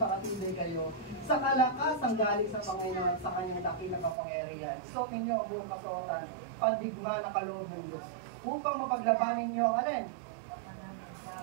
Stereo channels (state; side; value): drops out; left; at 4.2 s